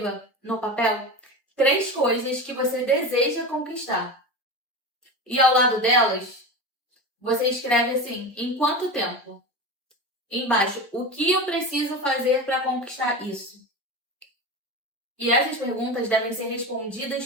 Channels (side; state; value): both; normal; correlation 0.25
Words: no papel 3 coisas que você deseja conquistar. E ao lado delas, você escreve assim, em quanto tempo? Embaixo, o que eu preciso fazer para conquistar isso? E essas perguntas devem ser respondidas